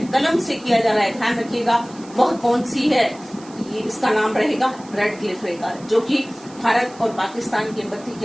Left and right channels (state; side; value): noise; right; hiss, 22 dB below the sound